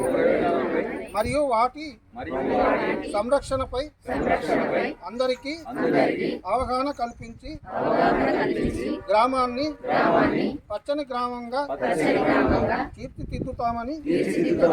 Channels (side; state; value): both; identical; correlation 1.00